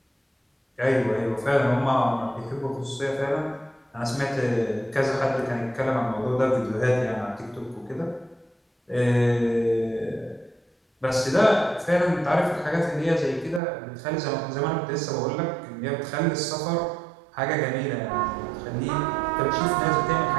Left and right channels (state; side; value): drops out; left; at 13.6 s